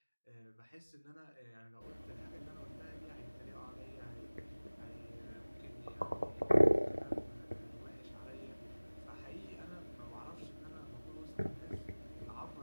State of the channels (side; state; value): both; inverted; correlation -1.00